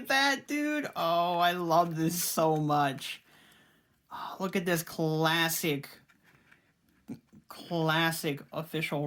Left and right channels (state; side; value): identical; both; correlation 1.00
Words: that, dude. Oh, I love this so much. Oh, look at this classic official